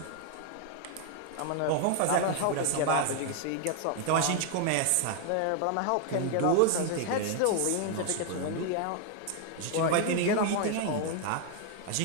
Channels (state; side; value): different; both; correlation 0.00